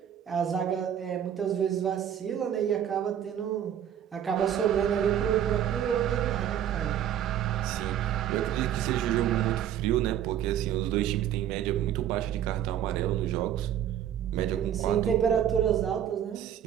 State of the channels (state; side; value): quieter; left; 10.1 dB